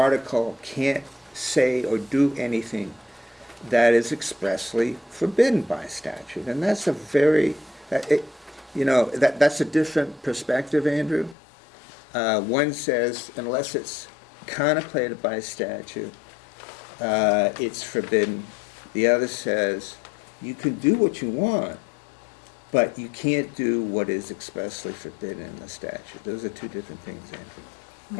can't say or do anything that is expressly forbidden by statute. And that's a that's a different perspective, Andrew. One says, unless it's contemplated by statute, it's forbidden. The other says, you can do what you want, but you can't do what is expressly forbidden in the statute. Those are two different things, Andrew.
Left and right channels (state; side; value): drops out; right; at 11.4 s